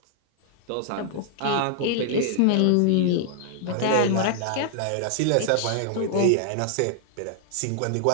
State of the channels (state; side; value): different; both; correlation 0.00